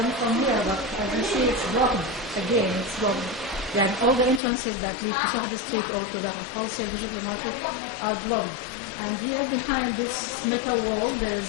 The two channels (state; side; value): drops out; right; at 4.4 s